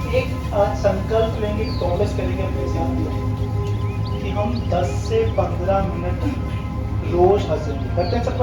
एक आज संकल्प लेंगे, प्रॉमिस करेंगे अपने साथ कि हम 10 से 15 मिनट रोज हंसेंगे। करते हैं सब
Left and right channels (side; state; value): both; identical; correlation 1.00